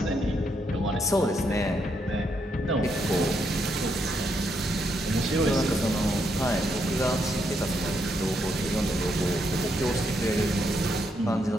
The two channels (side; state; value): both; normal; correlation 0.78